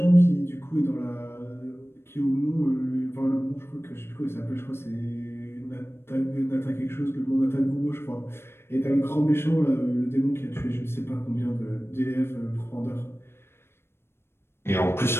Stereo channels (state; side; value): late; right; 0.12 ms